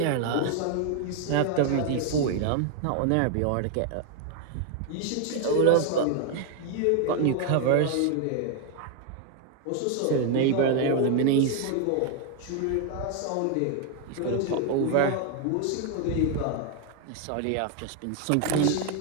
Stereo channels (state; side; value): different; both; correlation 0.00